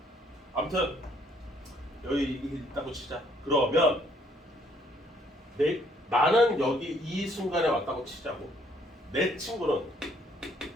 아무튼 여기 이게 있다고 치자. 그러면 나는 여기 이 순간에 왔다고 치자고. 내 친구는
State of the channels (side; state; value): both; normal; correlation 0.65